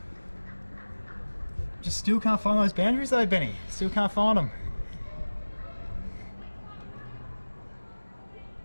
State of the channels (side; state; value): both; inverted; correlation -1.00